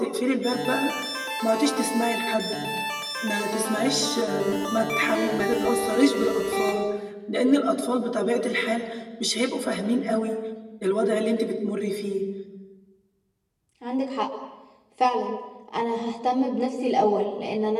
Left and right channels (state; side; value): identical; both; correlation 1.00